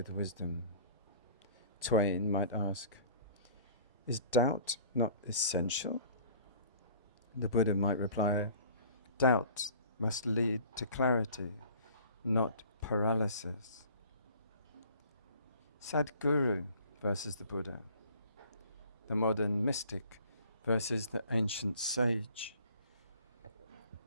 wisdom. Twain might ask, is doubt not essential? The Buddha might reply, doubt must lead to clarity, not paralysis. Sadhguru versus the Buddha. The modern mystic versus the ancient sage.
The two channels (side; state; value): both; inverted; correlation -0.50